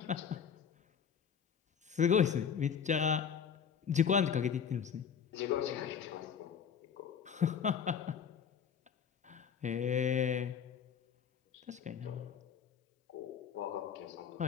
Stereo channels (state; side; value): quieter; right; 7.4 dB